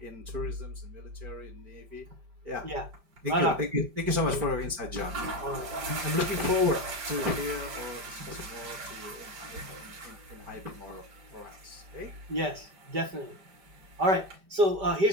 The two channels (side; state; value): left; late; 5.1 ms